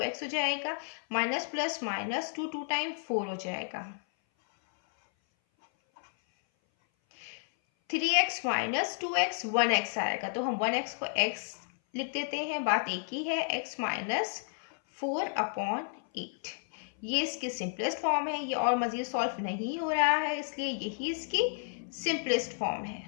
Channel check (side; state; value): right; silent; 57 dB below the other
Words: हो जाएगा, माइनस प्लस माइनस 2 2 टाइम 4 हो जाएगा। 3x माइनस 2x 1x आएगा, तो हम 1x को x लिख देते हैं, बात एक ही है, x माइनस 4/8। ये इसकी सिंपलेस्ट फॉर्म है, ये और मज़ीद सॉल्व नहीं हो रहा है, इसलिए यही इसकी सिंपलेस्ट फॉर्म है।